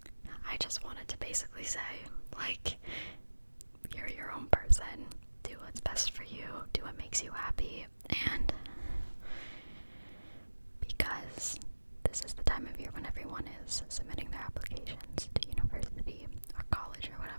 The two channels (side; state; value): both; inverted; correlation -1.00